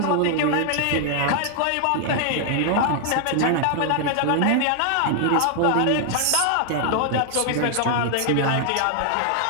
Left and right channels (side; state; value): both; different; correlation 0.00